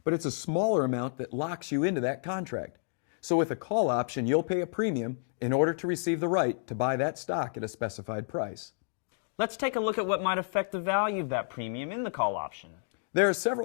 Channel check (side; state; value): right; silent; digital silence